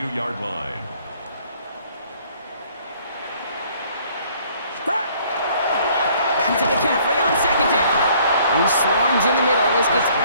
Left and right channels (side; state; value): both; inverted; correlation -0.60